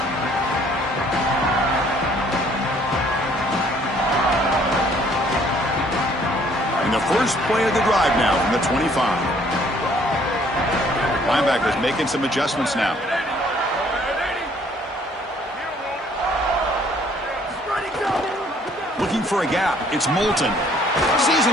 And the first play of the drive now from the 25. Linebackers making some adjustments now. Looking for a gap. It's Moulton. Sees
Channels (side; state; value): both; normal; correlation 0.61